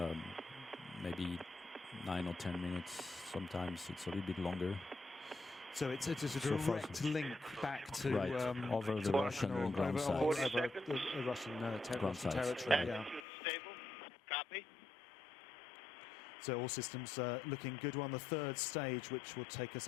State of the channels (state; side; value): drops out; right; at 13.2 s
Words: maybe 9 or 10 minutes. Sometimes it's a little bit longer. So it's a direct link back to over the Russian ground sites. Over the Russian territory. Right. Yeah. Stable. Copy. So all systems looking good. We're on the third stage, which will take us